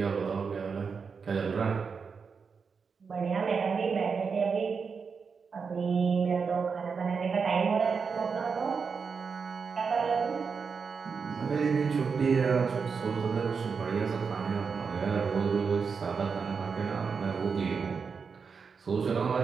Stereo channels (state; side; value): quieter; left; 5.5 dB